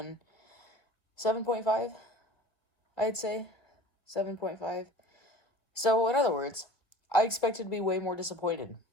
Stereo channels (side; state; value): right; late; 1.7 ms